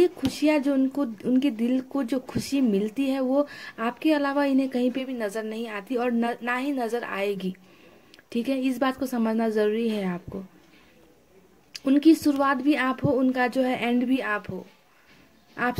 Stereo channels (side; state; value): both; identical; correlation 1.00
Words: खुशियाँ जो उनको, उनके दिल को जो खुशी मिलती है, वो आपके अलावा इन्हें कहीं पे भी नजर नहीं आती और ना ही नजर आएगी। ठीक है, इस बात को समझना जरूरी है आपको। उनकी शुरुआत भी आप हो, उनका जो है एंड भी आप हो।